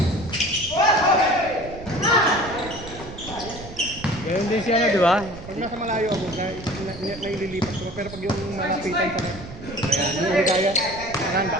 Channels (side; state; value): right; noise; rumble, 14 dB below the sound